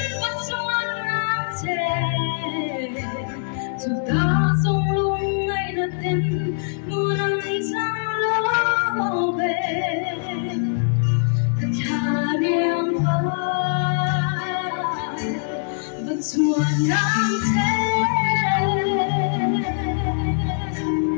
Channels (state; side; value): silent; right; digital silence